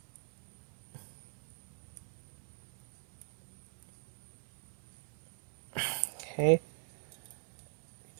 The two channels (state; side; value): silent; left; 50 dB below the other